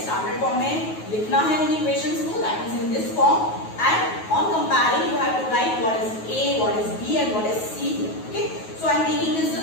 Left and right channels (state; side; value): late; right; 9.3 ms